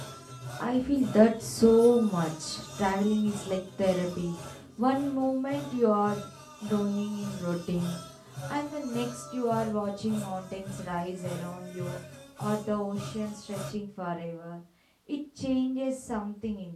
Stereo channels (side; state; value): both; identical; correlation 1.00